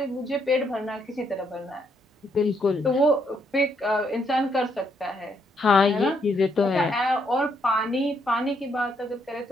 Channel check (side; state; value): both; normal; correlation 0.74